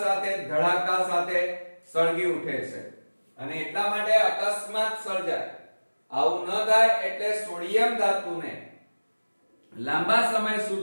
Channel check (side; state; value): both; inverted; correlation -1.00